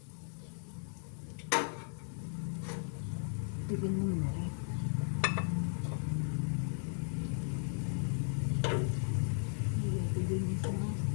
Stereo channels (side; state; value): right; silent; 54 dB below the other